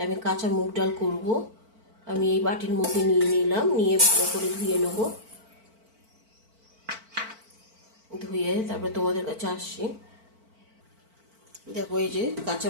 আমি কাঁচা মুগ ডাল করব। আমি এই বাটির মধ্যে নিয়ে নিলাম, নিয়ে ভালো করে ধুয়ে নেব। ধুয়ে তারপরে তোমাদের কাছে আসছি। দেখো, এই যে কাঁচা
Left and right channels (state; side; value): late; left; 4.5 ms